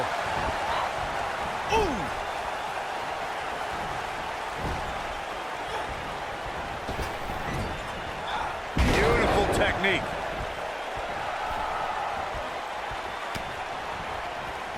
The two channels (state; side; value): identical; both; correlation 1.00